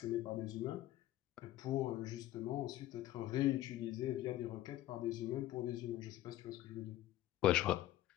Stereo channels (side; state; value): right; quieter; 14.6 dB